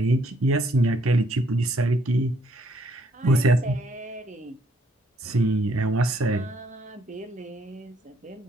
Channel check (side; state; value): both; normal; correlation 0.68